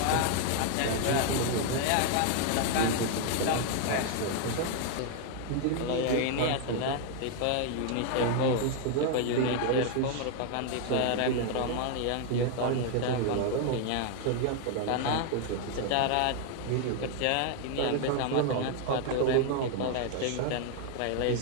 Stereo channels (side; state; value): both; different; correlation 0.00